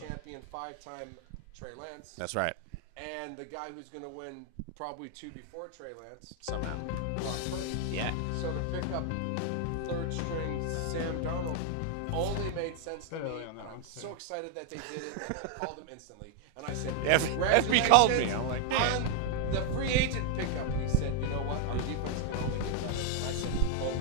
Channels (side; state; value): both; different; correlation 0.00